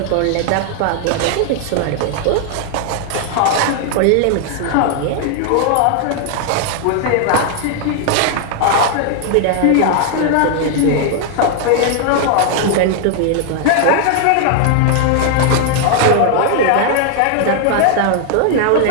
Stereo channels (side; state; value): both; different; correlation 0.00